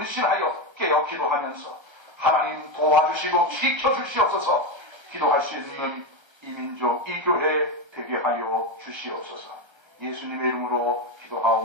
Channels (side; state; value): left; late; 1.3 ms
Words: 깨어 기도하면서 하나님 도와주시고 지켜주시옵소서. 기도할 수 있는 이 민족, 이 교회 되게 하여 주시옵소서. 예수님의 이름으로